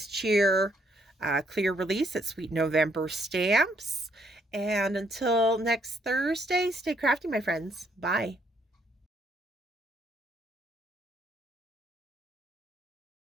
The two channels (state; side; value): normal; both; correlation 0.70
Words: Cheer clear release at Sweet November Stamps. And until next Thursday, stay crafty, my friends. Bye.